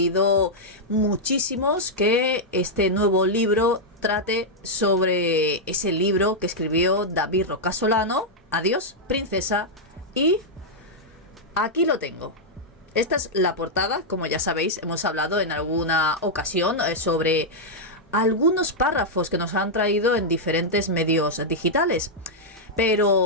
muchísimos que este nuevo libro trate sobre ese libro que escribió David Roca Solano, Adiós, Princesa, y aquí lo tengo. Esta es la portada, como ya sabéis, hemos hablado en alguna ocasión sobre algunos párrafos que nos han traído en diferentes medios digitales,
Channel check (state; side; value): normal; both; correlation -0.05